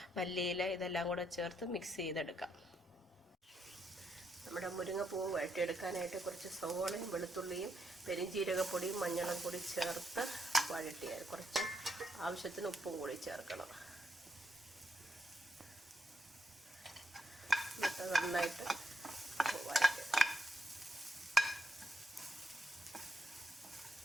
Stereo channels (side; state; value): both; normal; correlation 0.80